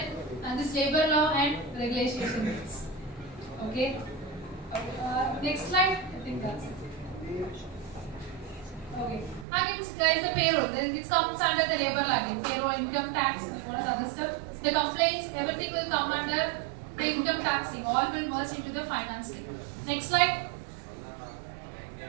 and this labor law and regulation. Okay. Next slide. I think that's it. Okay. Again, guys, the payroll. It comes under the labor law again. Payroll, income tax, and what are the other stuff. The complaints, everything will come under the income taxing. All will merge into the finance team. Next slide.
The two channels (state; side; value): drops out; left; at 9.5 s